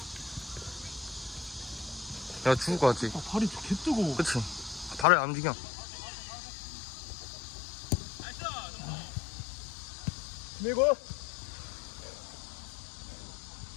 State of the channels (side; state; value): right; drops out; at 5.1 s